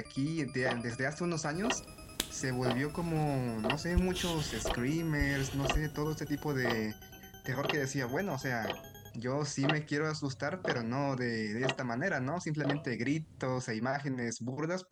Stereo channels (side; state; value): both; identical; correlation 1.00